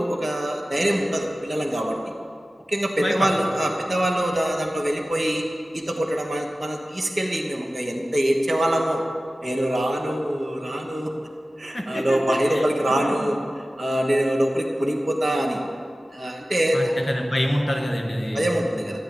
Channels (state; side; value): normal; both; correlation 0.96